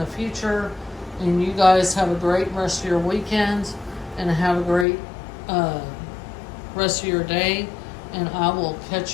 future. And you guys have a great rest of your weekend and have a great rest of your day. And I will catch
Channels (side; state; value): right; drops out; at 4.9 s